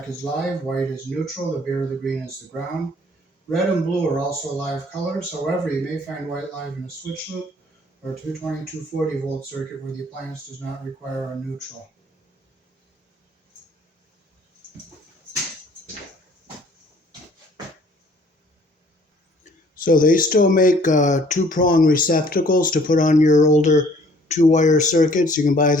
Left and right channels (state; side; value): normal; both; correlation 0.57